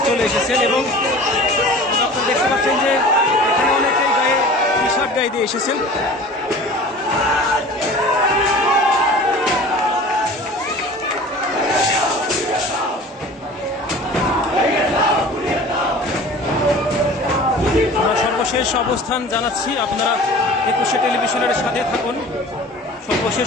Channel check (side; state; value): both; normal; correlation 0.42